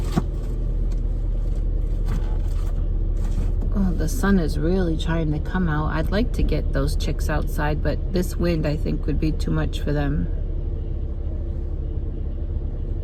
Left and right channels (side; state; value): both; identical; correlation 1.00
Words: Oh, the sun is really trying to come out. I'd like to get those chicks outside, but this wind, I think, would be too much for them.